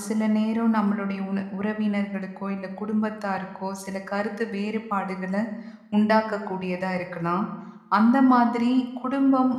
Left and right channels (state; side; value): identical; both; correlation 1.00